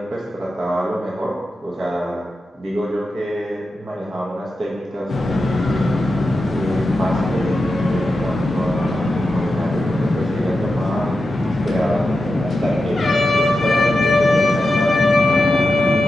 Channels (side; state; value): both; normal; correlation 0.90